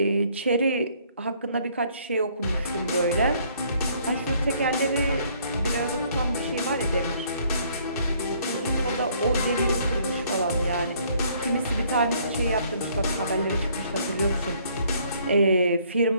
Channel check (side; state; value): both; inverted; correlation -0.63